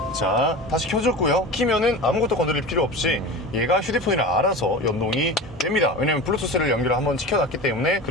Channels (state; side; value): normal; both; correlation 0.31